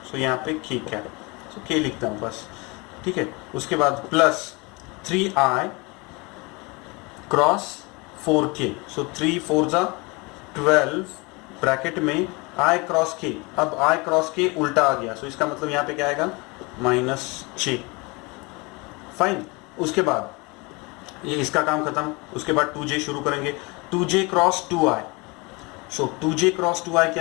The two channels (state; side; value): quieter; right; 26.9 dB